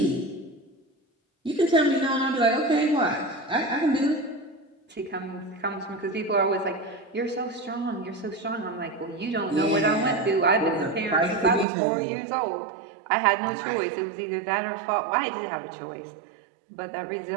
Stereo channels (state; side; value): drops out; left; at 11.7 s